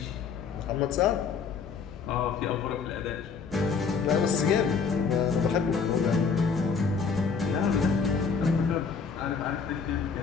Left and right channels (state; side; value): quieter; right; 5.6 dB